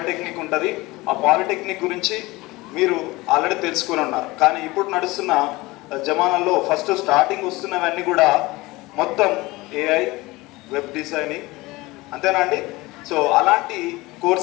ఉంటుంది. ఆ పాలిటెక్నిక్ గురించి మీరు ఆల్రెడీ తెలుసుకొని ఉన్నారు. కానీ ఇప్పుడు నడుస్తున్న జమానాలో ఫస్ట్ స్టార్టింగ్ వస్తున్నవన్నీ కూడా మొత్తం AI, వెబ్ డిజైనింగ్, అంతేనా అండి? సో అలాంటి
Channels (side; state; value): right; quieter; 21.3 dB